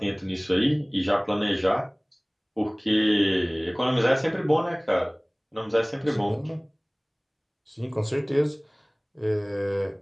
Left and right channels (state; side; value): identical; both; correlation 1.00